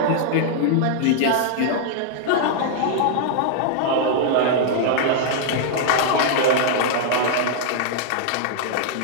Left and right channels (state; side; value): different; both; correlation -0.01